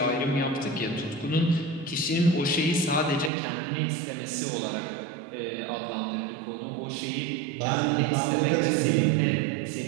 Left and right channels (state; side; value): drops out; left; at 3.3 s